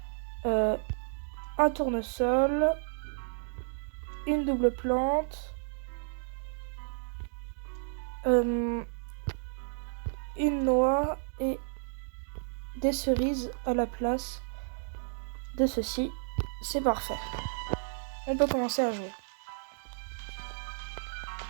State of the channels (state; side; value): silent; left; digital silence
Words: un tournesol, une double plante, une noix et des cerises à la place de ceci. C'est parfait. On peut commencer à jouer.